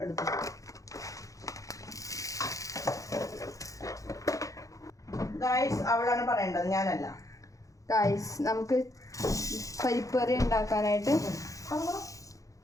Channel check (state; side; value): late; right; 0.16 ms